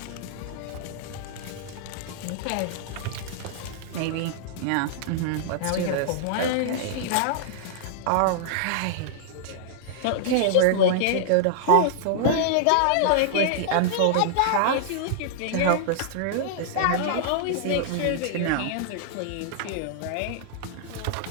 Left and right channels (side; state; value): both; different; correlation -0.01